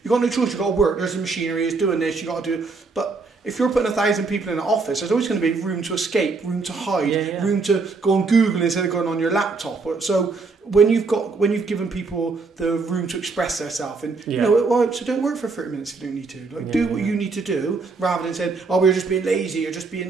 you've got no choice. You've got to work. There's the machinery. It's doing this. You've got to do it. But if you're putting 1,000 people in an office, there's always going to be room to escape, room to hide, room to go on Google instead of going on your laptop. So when you've given people the room to express themselves, and so don't work for 30 minutes if you don't need to. Like do what you need to do, rather than saying, "Oh, we're just being lazy, you're just being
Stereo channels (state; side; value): quieter; left; 4.2 dB